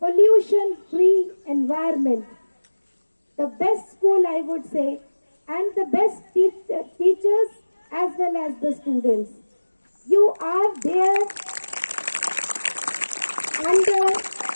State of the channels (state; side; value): inverted; both; correlation -1.00